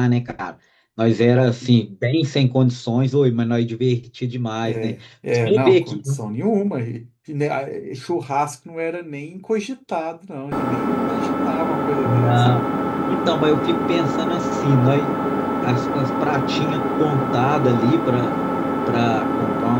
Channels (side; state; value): both; identical; correlation 1.00